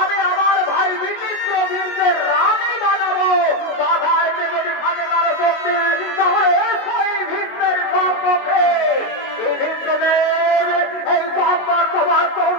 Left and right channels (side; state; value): right; late; 22 ms